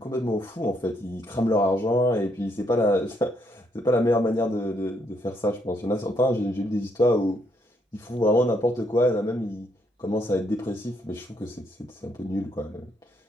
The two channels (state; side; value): normal; both; correlation 0.73